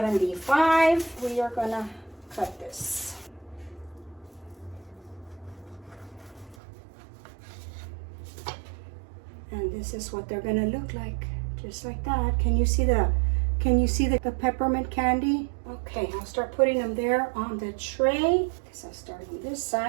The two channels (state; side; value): drops out; left; at 6.6 s